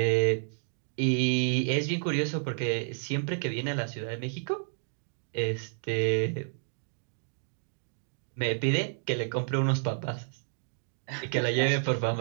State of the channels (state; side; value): silent; left; digital silence